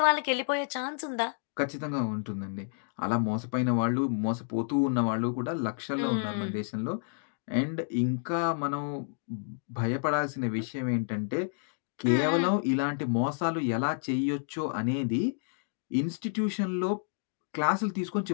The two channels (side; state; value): right; silent; digital silence